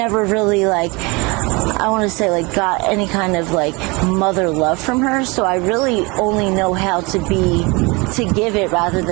really, like, I want to say, like, got any kind of, like, mother love from her. So I really only know how to give it rather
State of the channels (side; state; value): left; quieter; 26.6 dB